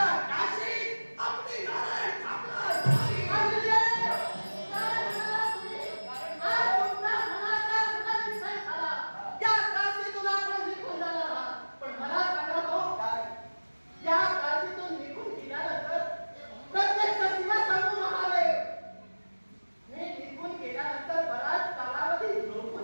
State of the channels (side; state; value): both; inverted; correlation -1.00